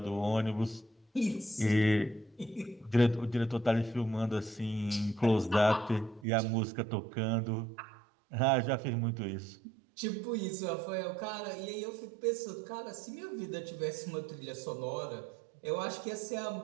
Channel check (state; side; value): drops out; left; at 6.2 s